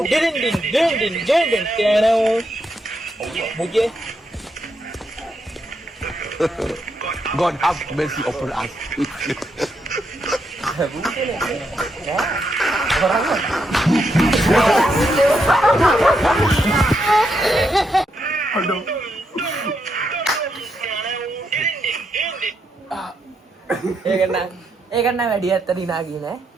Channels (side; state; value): both; normal; correlation 0.80